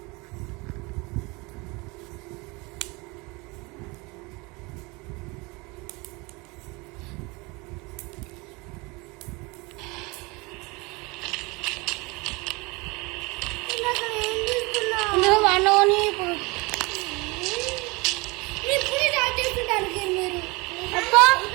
ఇందులో వాడిని ఇప్పుడు స్టార్ట్ చేస్తుంటానికి మీరు అబ్బా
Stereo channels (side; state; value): left; quieter; 26.1 dB